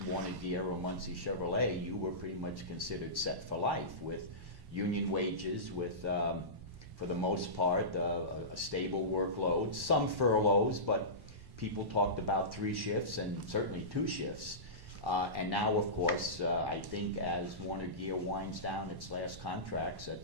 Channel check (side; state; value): left; late; 1.1 ms